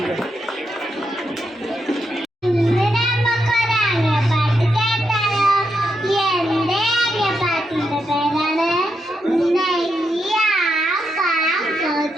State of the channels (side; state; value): both; normal; correlation 0.83